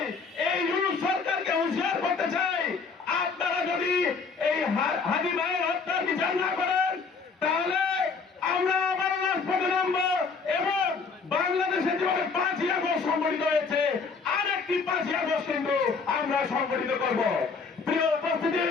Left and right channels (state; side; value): quieter; right; 4.9 dB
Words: এই ইউনুস সরকারকে হুঁশিয়ার করতে চাই, আপনারা যদি এই হাদি ভাইয়ের হত্যার বিচার না করেন, তাহলে আমরা আবার রাজপথে নামবো এবং বাংলাদেশে যেভাবে 5ই আগস্ট সংগঠিত হয়েছে, আরেকটি 5ই আগস্ট কিন্তু আমরা সংগঠিত করব। প্রিয় উপস্থিতি,